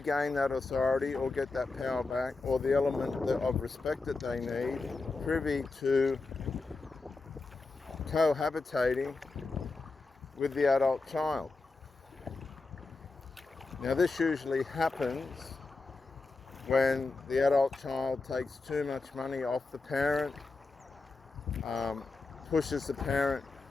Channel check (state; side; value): quieter; right; 3.7 dB